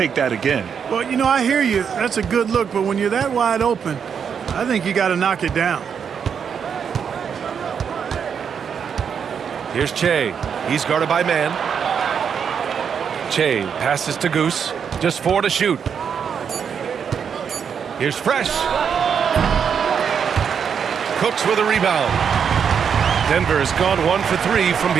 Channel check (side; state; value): left; quieter; 7.2 dB